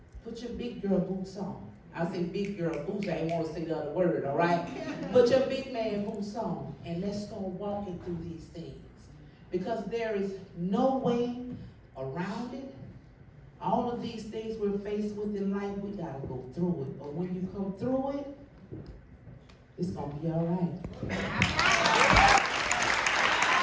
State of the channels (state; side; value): identical; both; correlation 1.00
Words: Put your big girl boots on. I say big girl boots. I ain't want to say the other word, all right? Put your big man boots on. And let's start walking through these things. Because there is no way around it. All of these things we're faced with in life, we gotta go through it. But when you come through it, it's gonna be all right.